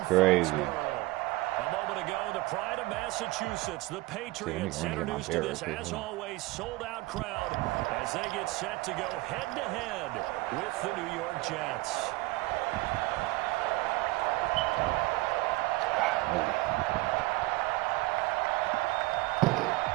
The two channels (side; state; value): left; quieter; 20.8 dB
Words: crazy. A moment ago, the pride of Massachusetts, the Patriots, introduced to this, as always, sold-out crowd as they get set to go head-to-head with the New York Jets.